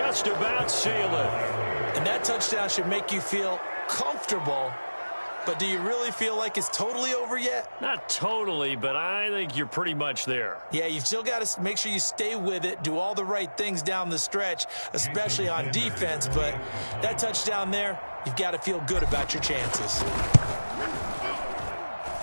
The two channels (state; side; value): inverted; both; correlation -1.00